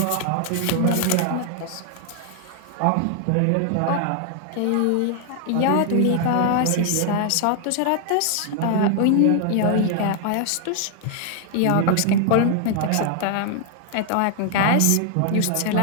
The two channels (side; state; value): both; different; correlation 0.00